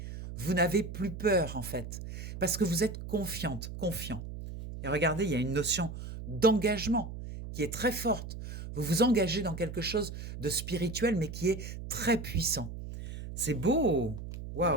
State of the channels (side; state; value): right; noise; hum, 9 dB below the sound